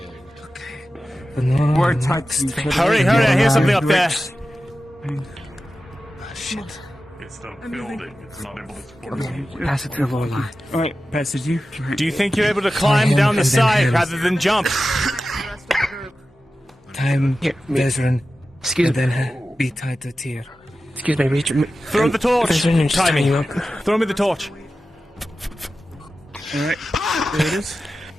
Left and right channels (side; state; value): both; normal; correlation 0.94